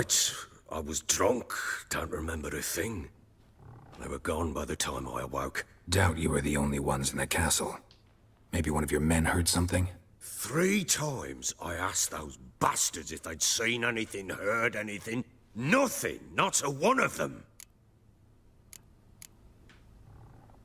I was drunk. Don't remember a thing. They were gone by the time I awoke. Doubt you were the only ones in the castle. Maybe one of your men heard something? 3 times I asked those bastards if they'd seen anything, heard anything. Nothing, not a one of them.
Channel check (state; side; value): identical; both; correlation 1.00